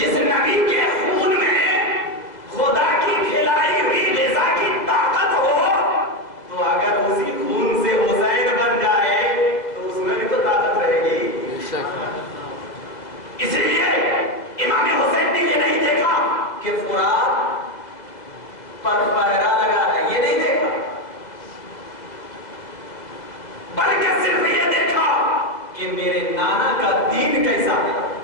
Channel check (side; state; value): right; late; 2.0 ms